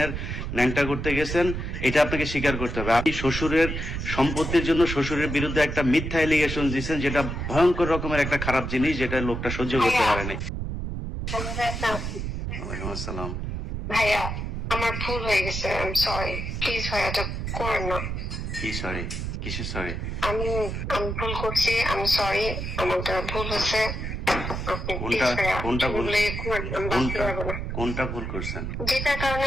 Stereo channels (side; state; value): right; noise; rumble, 4 dB below the sound